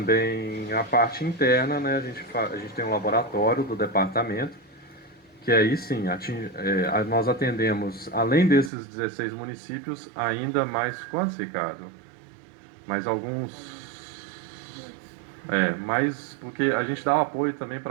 a parte interna, né? A gente tem um laboratório do departamento, que aí sim, nós atendemos, além desses 16 municípios, ainda mais, quantos, Ricardo? Mais alguns... mais, porque a gente dá apoio também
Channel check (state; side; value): drops out; left; at 8.7 s